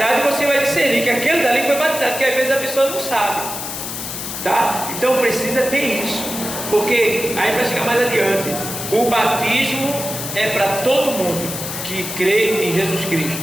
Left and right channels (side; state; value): left; noise; hiss, 6 dB below the sound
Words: e você vai discernir que aquele dali foi batizado, porque às vezes a pessoa não sabe, tá? Então precisa ter isso, porque aí vai chegar mais adiante, o batismo é para todo mundo que crê em Jesus Cristo,